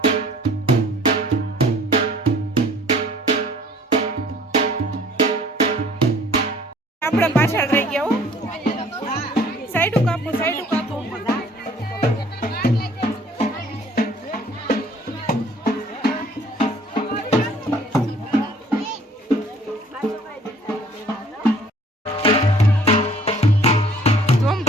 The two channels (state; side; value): normal; both; correlation 0.55